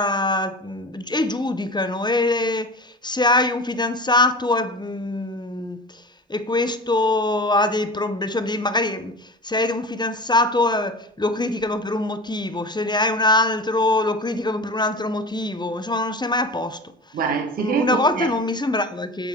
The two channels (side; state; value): both; normal; correlation 0.33